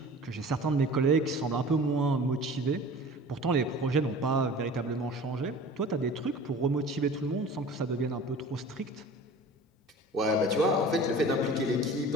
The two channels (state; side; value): normal; both; correlation 0.41